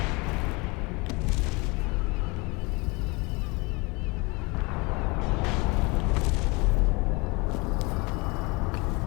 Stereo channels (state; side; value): quieter; right; 26.9 dB